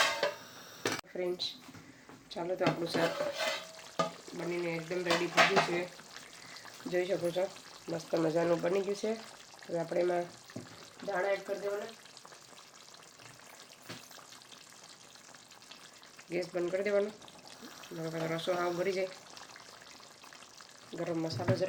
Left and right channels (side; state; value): both; identical; correlation 1.00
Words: ફ્રેન્ડ્સ. ચાલો તો આપણું શાક બનીને એકદમ રેડી થઈ ગયું છે. જોઈ શકો છો મસ્ત મજાનું બની ગયું છે. હવે આપણે એમાં દાણા એડ કરી દેવાના. ગેસ બંધ કરી દેવાનો. રસો આવ ભરી જાય. ગરમ મસાલો